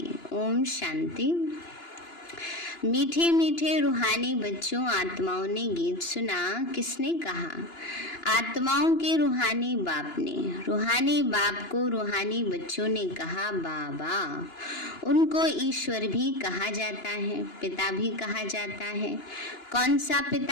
ओम शांति। मीठे मीठे रूहानी बच्चों, आत्माओं ने गीत सुना। किसने कहा? आत्माओं के रूहानी बाप ने। रूहानी बाप को रूहानी बच्चों ने कहा बाबा। उनको ईश्वर भी कहा जाता है, पिता भी कहा जाता है। कौन सा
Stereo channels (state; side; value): late; right; 2.9 ms